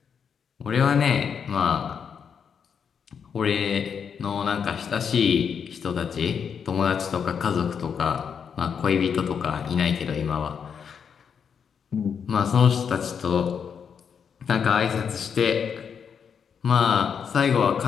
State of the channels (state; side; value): quieter; right; 7.0 dB